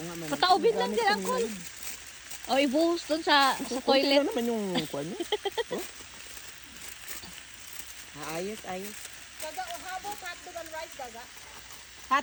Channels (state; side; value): identical; both; correlation 1.00